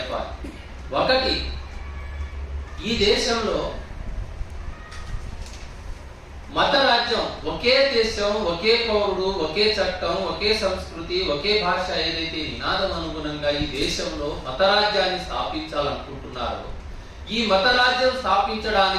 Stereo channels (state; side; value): identical; both; correlation 1.00